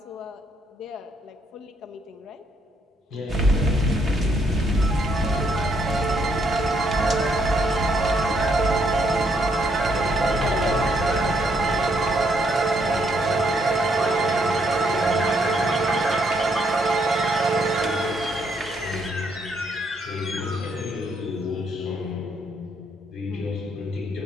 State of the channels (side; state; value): both; normal; correlation 0.73